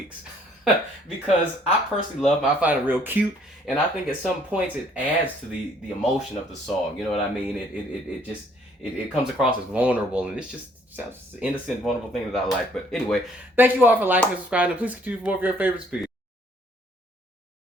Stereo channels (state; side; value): normal; both; correlation 0.63